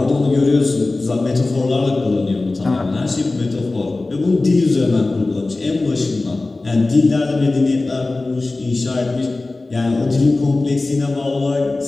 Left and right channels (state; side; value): quieter; right; 3.2 dB